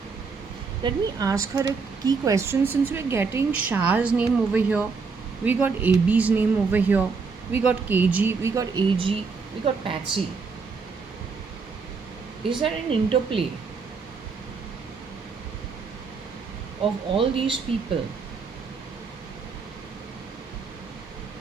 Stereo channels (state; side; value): quieter; left; 4.9 dB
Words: Let me ask her a key question. Since we're getting Shah's name over here, we got AB's name over here, we got KG, we got AG, we got Patsy. Is there an interplay of all these people